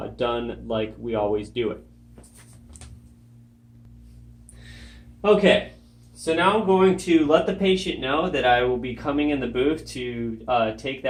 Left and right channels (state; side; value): identical; both; correlation 1.00